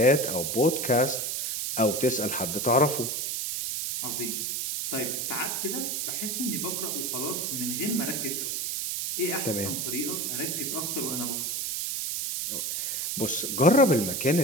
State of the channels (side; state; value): right; noise; hiss, 1 dB below the sound